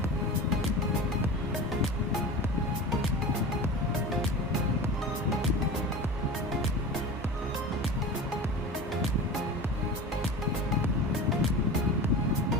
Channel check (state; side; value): normal; both; correlation 0.32